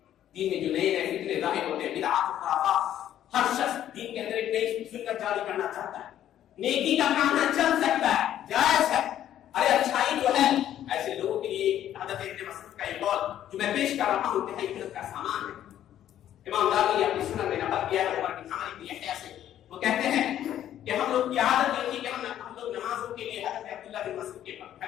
دین میں جو نئے نئے فتنے ظاہر ہوتے ہیں, بدعات و خرافات, ہر شخص دین کے اندر ایک نئی سنت جاری کرنا چاہتا ہے. نیکی کا کام نہ چل سکتا ہے, جائز ہے. ارے اچھائی جو ہے ایسے لوگوں کے لیے حضرت ابن مسعود کا یہ قول جو میں پیش کر رہا ہوں انتہائی علم کا سامان ہے. امام دارمی اپنی سنن میں نقل کیا ہے عمر بن عامر بن یحییٰ سے. وہ کہتے ہیں کہ ہم لوگ کی عادت یہ تھی کہ ہم لوگ نمازوں کے لیے حضرت عبداللہ بن مسعود کے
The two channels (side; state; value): right; quieter; 11.4 dB